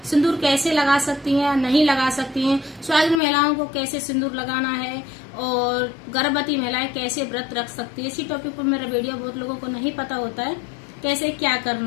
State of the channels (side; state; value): right; drops out; at 3.2 s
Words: सिंदूर कैसे लगा सकती हैं, नहीं लगा सकती हैं, सुहागिन महिलाओं को कैसे सिंदूर लगाना है और गर्भवती महिलाएं कैसे व्रत रख सकती है। इसी टॉपिक पर मेरा वीडियो बहुत लोगों को नहीं पता होता है कैसे क्या